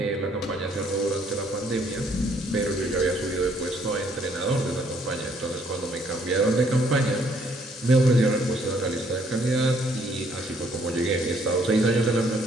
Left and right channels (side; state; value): both; normal; correlation 0.66